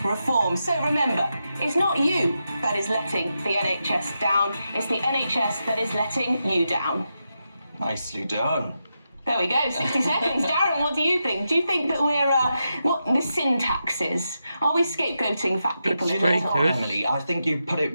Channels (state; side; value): inverted; both; correlation -0.87